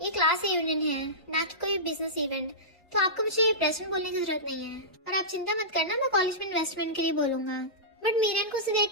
ये क्लास रियूनियन है ना कि कोई बिजनेस इवेंट, तो आपको मुझे प्रेसिडेंट बोलने की जरूरत नहीं है, और आप चिंता मत करना, मैं कॉलेज में इन्वेस्टमेंट के लिए बोलूंगा। बट मीरन को उसे देख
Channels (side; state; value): both; normal; correlation -0.17